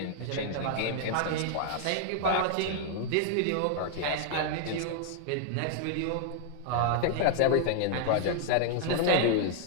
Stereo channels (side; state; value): both; different; correlation -0.01